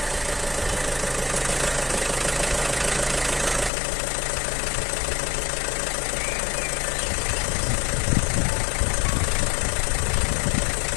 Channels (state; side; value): drops out; right; at 3.7 s